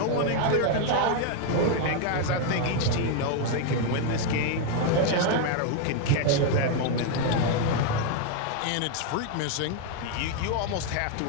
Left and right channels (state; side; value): different; both; correlation 0.00